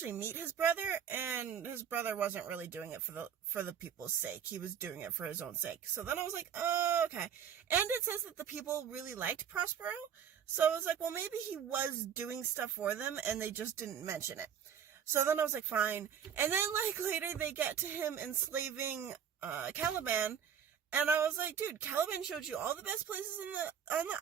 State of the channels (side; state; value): left; quieter; 8.2 dB